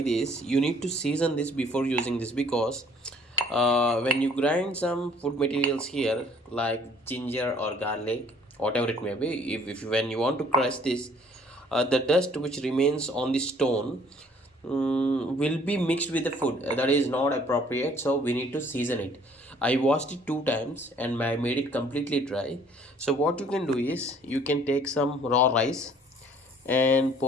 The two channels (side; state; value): both; normal; correlation 0.58